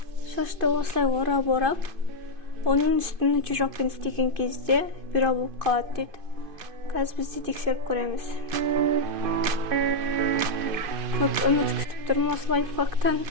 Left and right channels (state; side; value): late; left; 2.5 ms